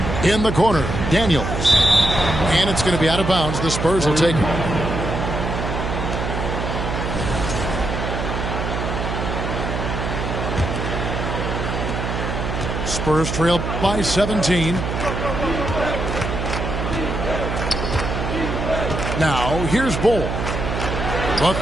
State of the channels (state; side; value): noise; right; hum, 3 dB below the sound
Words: In the corner, Daniels. And it's going to be out of bounds. The Spurs will take it. Spurs trail by 17. Now, here's Bull. The